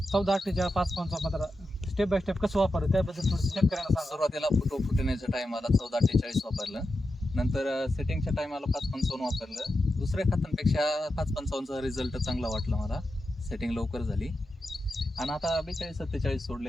14-48 5-15 स्टेप बाय स्टेप कसं वापरलं त्याबद्दल थोडं शेतकऱ्यांना सांगा. सुरुवातीला फुटण्याच्या टायमाला 14-48 वापरलं, नंतर सेटिंगच्या टायमाला 5-55 वापरलं. दुसऱ्या खतांपेक्षा 5-55चा रिझल्ट चांगला वाटला मला. सेटिंग लवकर झाली आणि आता 42-47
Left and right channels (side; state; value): both; normal; correlation 0.89